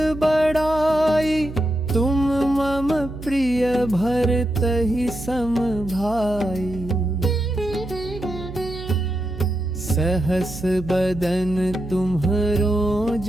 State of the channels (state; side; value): noise; right; hum, 11 dB below the sound